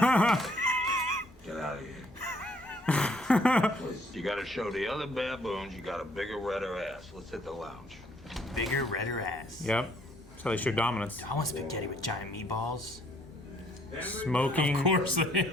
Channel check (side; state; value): both; normal; correlation 0.65